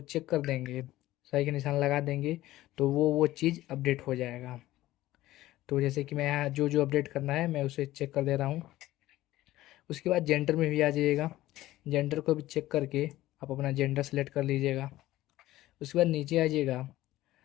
चेक कर देंगे, सही का निशान लगा देंगे, तो वो चीज़ अपडेट हो जाएगा। तो जैसे कि मैं यहाँ जो जो अपडेट करना है मैं उसे चेक कर दे रहा हूँ। उसके बाद जेंडर में भी आ जाइएगा। जेंडर को भी चेक करके आप अपना जेंडर सेलेक्ट कर लीजिएगा। उसके बाद नीचे आ जाइएगा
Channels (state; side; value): quieter; right; 15.8 dB